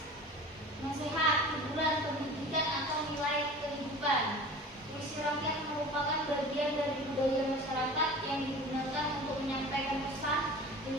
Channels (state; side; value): normal; both; correlation 0.39